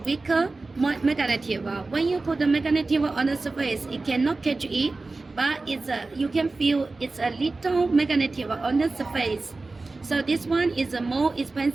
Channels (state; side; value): quieter; left; 3.5 dB